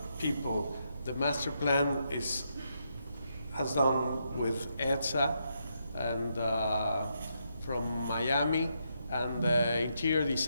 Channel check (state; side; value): inverted; both; correlation -0.80